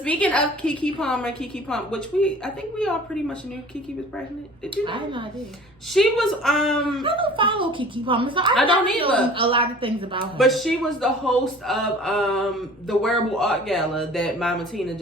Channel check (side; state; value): both; normal; correlation 0.46